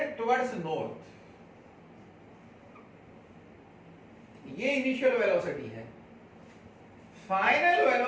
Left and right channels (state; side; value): identical; both; correlation 1.00